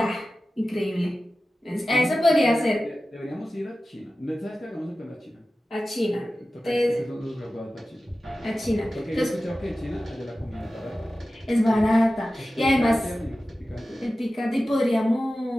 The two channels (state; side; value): normal; both; correlation 0.94